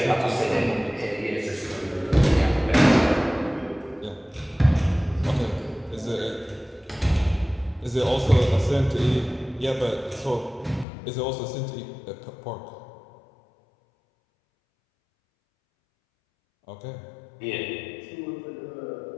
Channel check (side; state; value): right; drops out; at 10.9 s